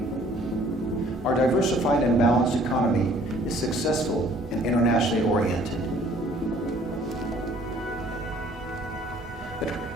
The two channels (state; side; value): normal; both; correlation 0.57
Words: Our diversified and balanced economy is successful and internationally oriented. But